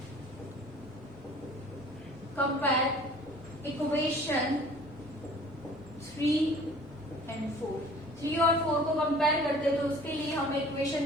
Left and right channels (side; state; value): both; normal; correlation 0.49